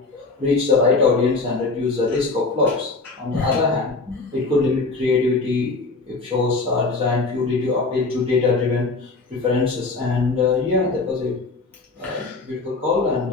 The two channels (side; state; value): right; quieter; 3.7 dB